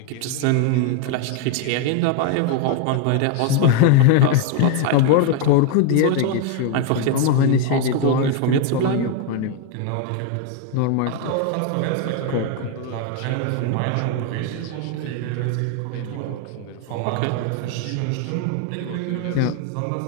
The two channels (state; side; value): different; both; correlation 0.01